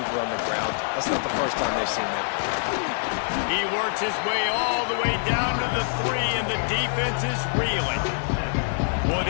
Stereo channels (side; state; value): right; silent; 62 dB below the other